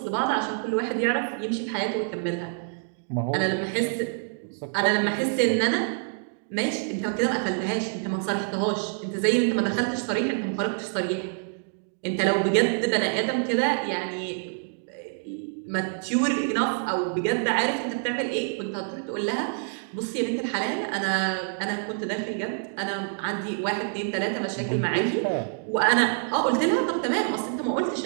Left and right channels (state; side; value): silent; left; digital silence